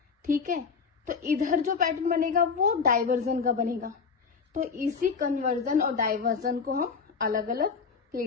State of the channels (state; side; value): quieter; right; 5.4 dB